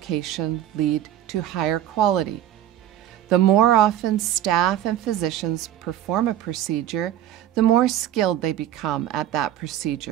lead to higher quality. The more often staff and physicians perform a procedure, the more skilled they become at that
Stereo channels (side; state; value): left; quieter; 12.0 dB